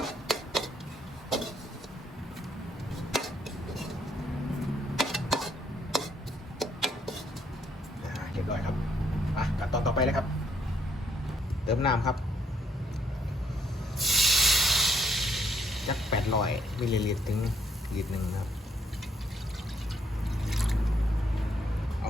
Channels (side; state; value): both; normal; correlation 0.71